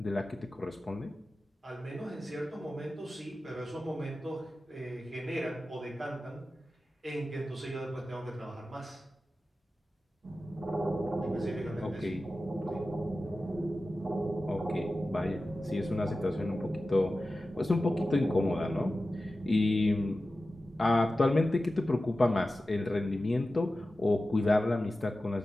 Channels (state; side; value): normal; both; correlation 0.94